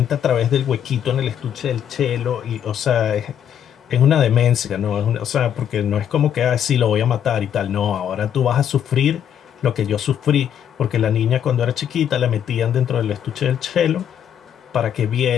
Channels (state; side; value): quieter; right; 9.2 dB